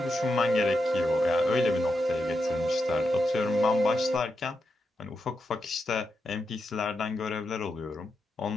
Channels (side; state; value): both; normal; correlation 0.86